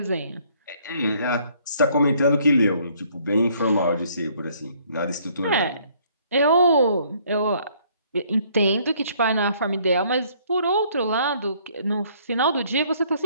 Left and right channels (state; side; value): inverted; both; correlation -0.63